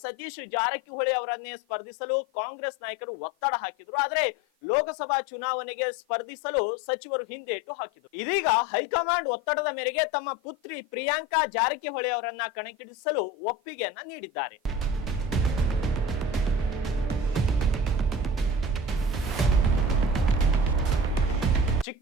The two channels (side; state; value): both; normal; correlation 0.35